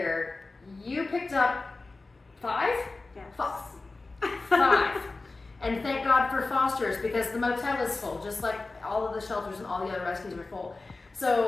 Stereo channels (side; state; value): right; quieter; 3.5 dB